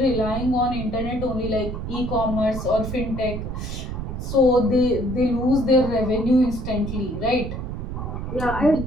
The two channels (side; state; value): right; noise; rumble, 6 dB below the sound